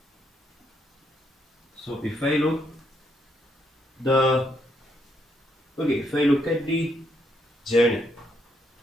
So if I look if I look at the journey,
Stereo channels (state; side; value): normal; both; correlation 0.75